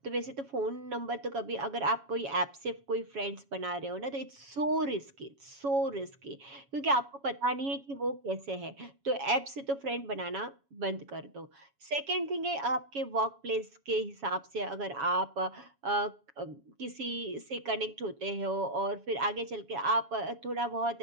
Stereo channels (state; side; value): late; left; 7.2 ms